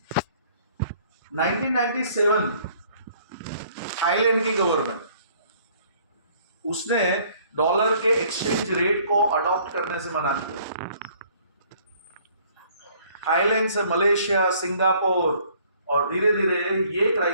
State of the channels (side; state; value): both; inverted; correlation -0.59